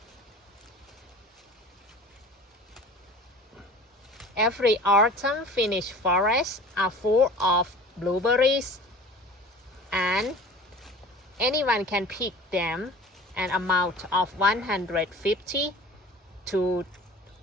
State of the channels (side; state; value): both; normal; correlation 0.42